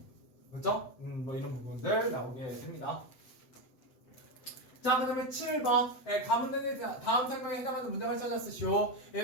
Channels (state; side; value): late; right; 7.9 ms